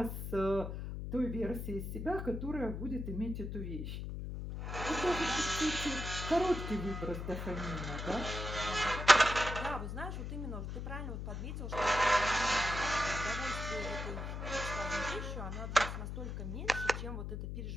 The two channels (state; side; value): noise; left; hum, 5 dB below the sound